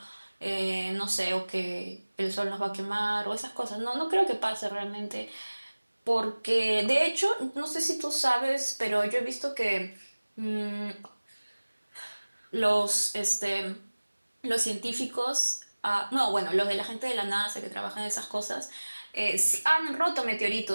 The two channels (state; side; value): inverted; both; correlation -1.00